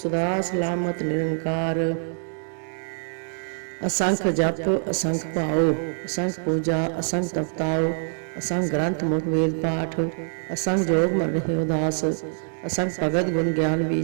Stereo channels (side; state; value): left; silent; 62 dB below the other